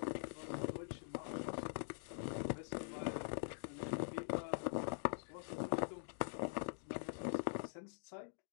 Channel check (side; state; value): right; silent; digital silence